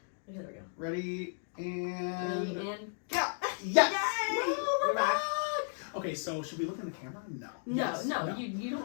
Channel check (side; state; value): right; silent; digital silence